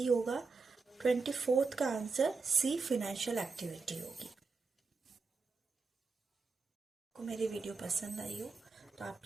होगा। 24th का आंसर सी फाइनेंशियल एक्टिविटी होगी। आपको मेरी वीडियो पसंद आई हो तो आप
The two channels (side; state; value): left; quieter; 4.4 dB